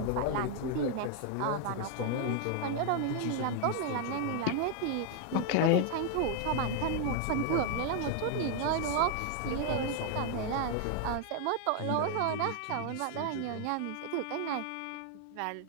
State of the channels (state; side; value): different; both; correlation 0.00